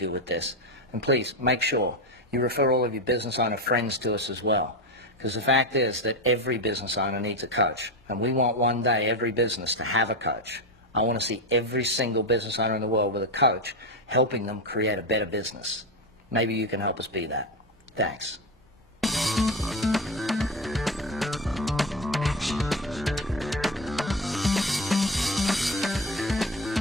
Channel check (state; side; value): normal; both; correlation 0.16